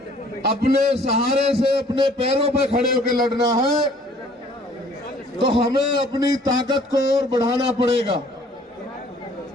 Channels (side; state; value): both; normal; correlation 0.57